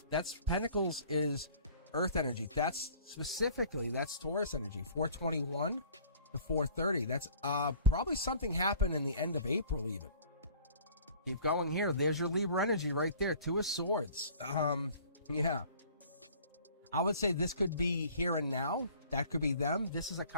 That's Pentacles is Earth energy. That's specifically, that's Taurus energy. 421 to 430. That's probably something happened in the end of April even. Keep going here. There's your Libra energy right there. 2 of Swords. Yeah. I would say this could be here and now. That could be them. This is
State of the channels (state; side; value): inverted; both; correlation -0.50